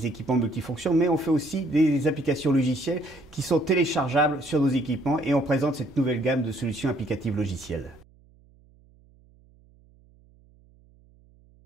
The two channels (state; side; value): noise; right; hum, 29 dB below the sound